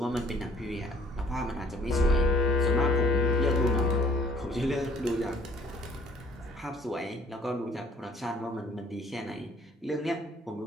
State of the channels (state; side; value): normal; both; correlation 0.58